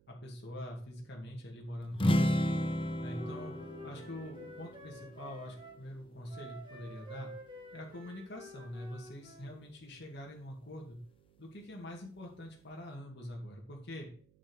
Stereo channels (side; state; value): right; noise; hum, 28 dB below the sound